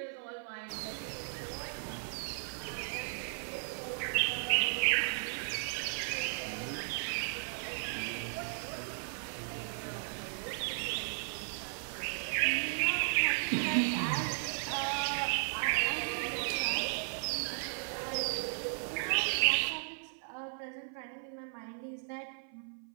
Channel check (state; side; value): silent; left; 54 dB below the other